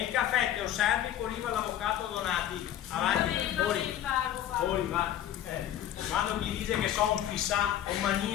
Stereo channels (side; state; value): right; quieter; 11.5 dB